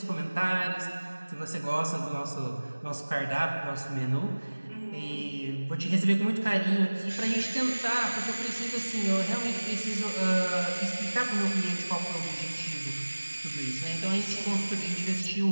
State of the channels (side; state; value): both; inverted; correlation -1.00